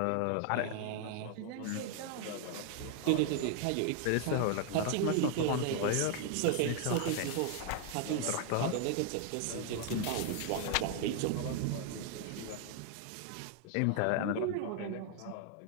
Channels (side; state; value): both; different; correlation 0.00